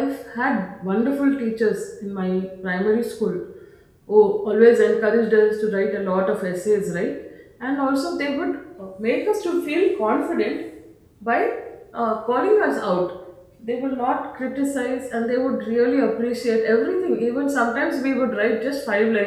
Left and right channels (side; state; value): both; identical; correlation 1.00